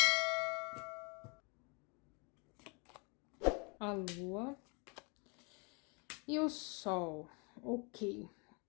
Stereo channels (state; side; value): quieter; right; 32.5 dB